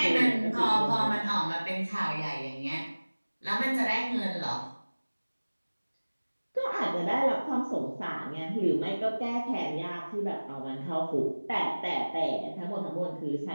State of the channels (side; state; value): both; inverted; correlation -1.00